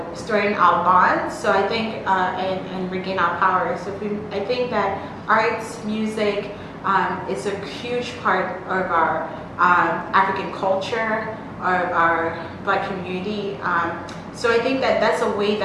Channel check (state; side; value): identical; both; correlation 1.00